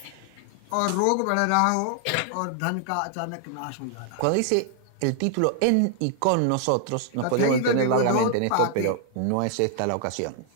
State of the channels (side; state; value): both; different; correlation 0.00